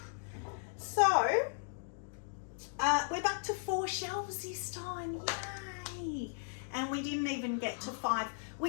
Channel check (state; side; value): silent; right; digital silence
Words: So We're back to 4 shelves this time, yay! And we didn't even get to 5,